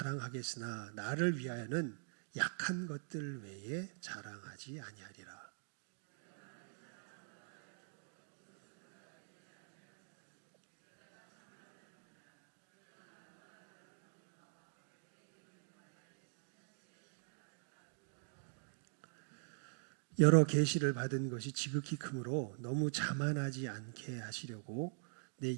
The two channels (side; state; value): left; silent; digital silence